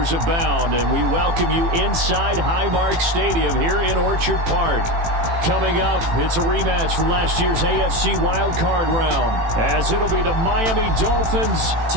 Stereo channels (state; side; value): late; left; 18 ms